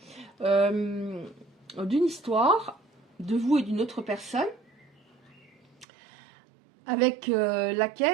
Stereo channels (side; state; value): left; drops out; at 5.9 s